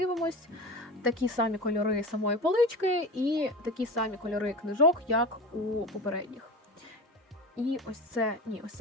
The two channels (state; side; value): normal; both; correlation 0.29